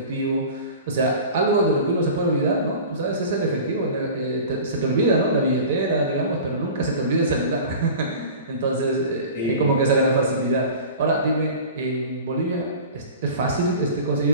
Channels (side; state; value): both; inverted; correlation -0.38